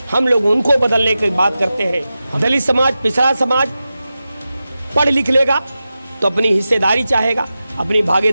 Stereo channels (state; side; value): inverted; both; correlation -0.93